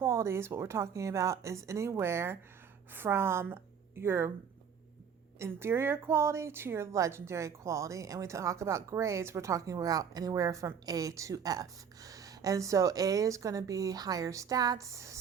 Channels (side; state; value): left; quieter; 7.2 dB